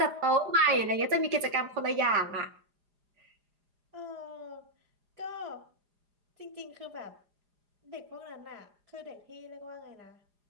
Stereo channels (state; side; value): late; left; 4.9 ms